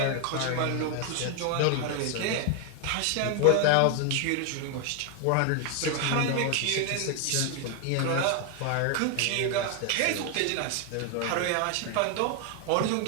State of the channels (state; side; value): different; both; correlation 0.01